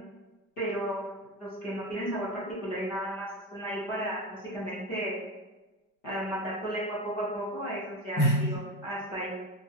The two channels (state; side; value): late; right; 5.1 ms